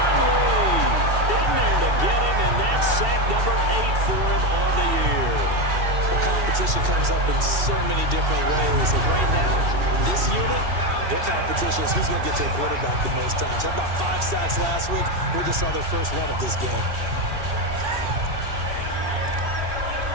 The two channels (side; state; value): left; late; 2.7 ms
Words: Lee in there to get him, and that's sack number 8 for him on the year. Well, competition comes up in so many different ways. And right now, this unit, their competition is who's going to get to the quarterback the most times. How about 5 sacks last week? We just saw their first one of this game.